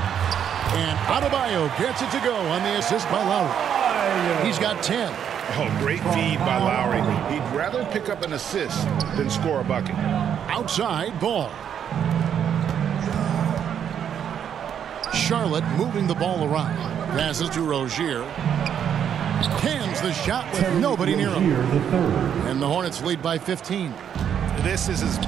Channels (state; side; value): quieter; left; 8.7 dB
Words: And Adebayo gets it to go on the assist by Lowry. He's got 10. Oh, great feed by Lowry. He'd rather pick up an assist than score a bucket. Outside Ball. Charlotte moving the ball around. Passes to Rozier. Cans the shot with nobody near him. And the Hornets lead by 15. This is as